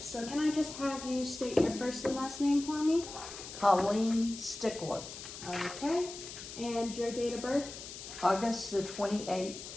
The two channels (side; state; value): left; noise; hiss, 11 dB below the sound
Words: so can I just have you state your first and last name for me? Colleen Stickler. Okay, and your date of birth August the 28th,